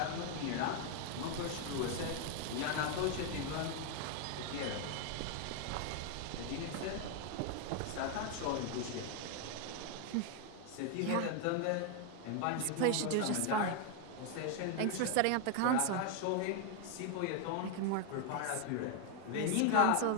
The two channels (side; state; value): both; different; correlation 0.01